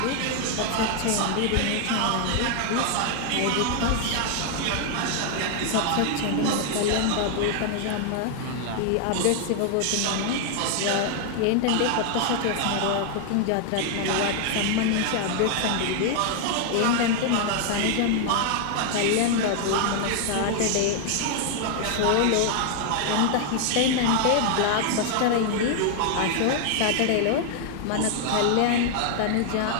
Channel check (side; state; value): both; different; correlation 0.00